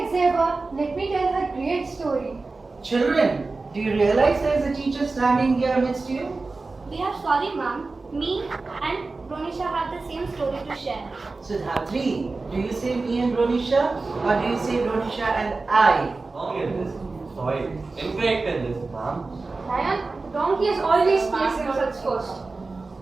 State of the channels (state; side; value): quieter; left; 3.7 dB